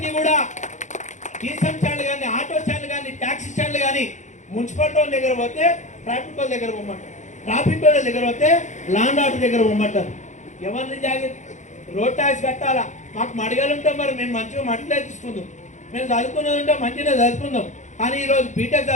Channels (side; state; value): right; late; 0.35 ms